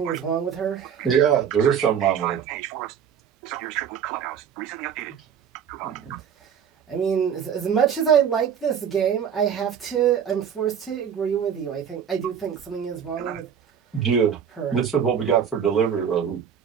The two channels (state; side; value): quieter; left; 8.0 dB